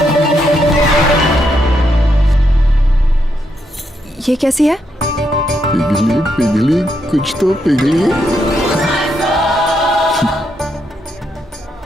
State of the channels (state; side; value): normal; both; correlation 0.79